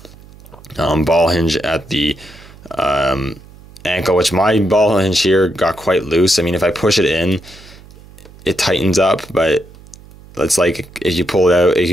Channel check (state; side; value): noise; right; hum, 22 dB below the sound